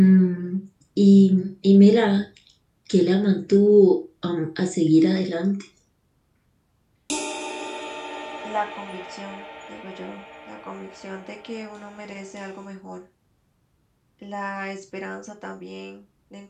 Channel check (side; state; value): both; identical; correlation 1.00